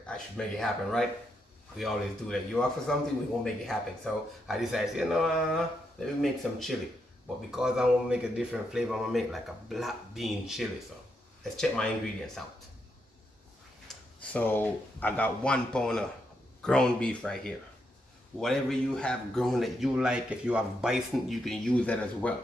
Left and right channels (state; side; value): normal; both; correlation 0.81